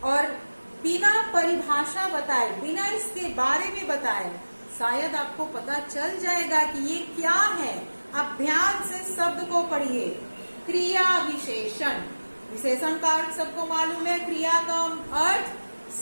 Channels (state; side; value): inverted; both; correlation -1.00